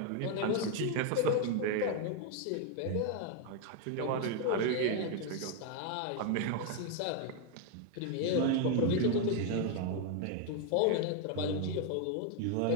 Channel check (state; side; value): different; both; correlation 0.01